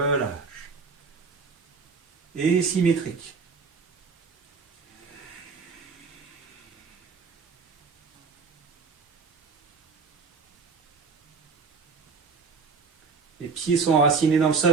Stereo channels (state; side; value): quieter; left; 4.9 dB